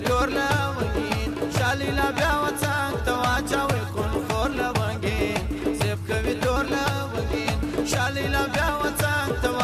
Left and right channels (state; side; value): identical; both; correlation 1.00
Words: تور لونګین. شلیلا بیا وطن ته واچوئ خونخور لونګین، زب کوي تور لونګین. شلیلا بیا وطن ته